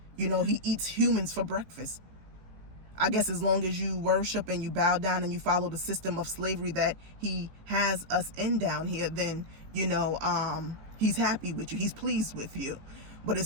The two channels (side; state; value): left; late; 19 ms